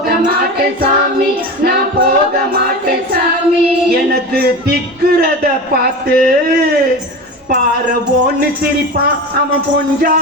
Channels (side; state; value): both; normal; correlation 0.27